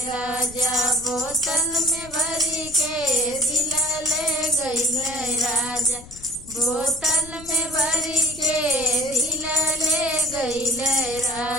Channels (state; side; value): noise; left; rumble, 18 dB below the sound